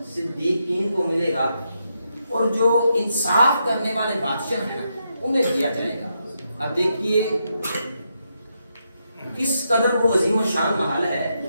صدیقین کو ملے گا اور جو انصاف کرنے والے بادشاہ ہیں نا انہیں دیا جائے گا۔ اب دیکھیے کس قدر وہ عظیم و شان محل ہے،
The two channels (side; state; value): both; inverted; correlation -0.82